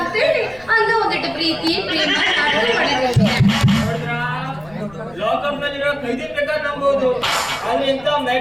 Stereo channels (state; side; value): noise; left; rumble, 24 dB below the sound